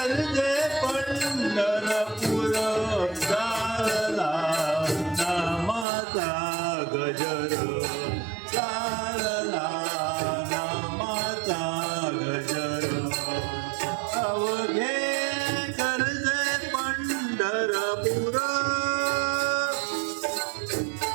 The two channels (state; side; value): drops out; left; at 5.9 s